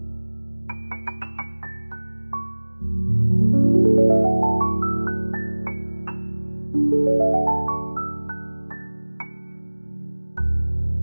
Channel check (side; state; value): both; inverted; correlation -1.00